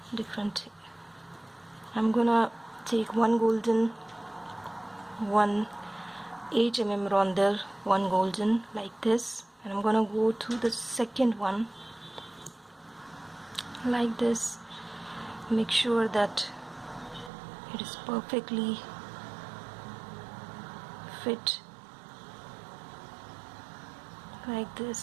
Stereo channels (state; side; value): drops out; left; at 17.3 s